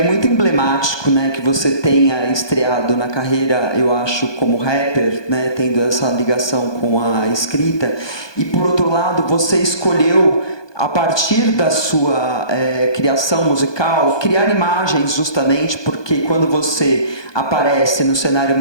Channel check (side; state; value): right; late; 1.2 ms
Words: muito emblemático, né, que você tenha estreado na carreira, eu acho, como rapper, né, tendo essa ligação com a escrita. E por outro lado, você escolheu, a partir da sua criação musical, criar imagens, justamente porque quando você aparece no cenário